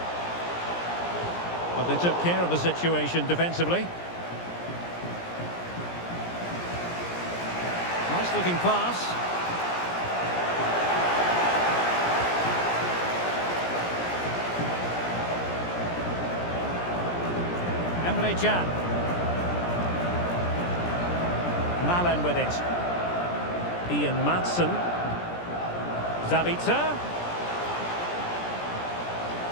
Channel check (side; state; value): right; late; 17 ms